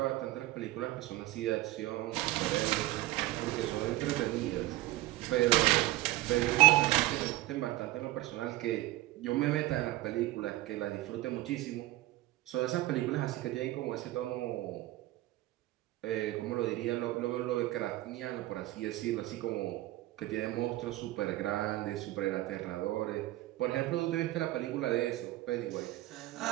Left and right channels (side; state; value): left; quieter; 17.0 dB